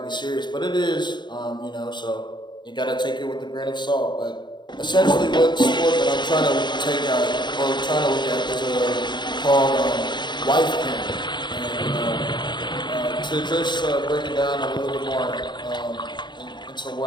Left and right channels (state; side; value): late; right; 0.22 ms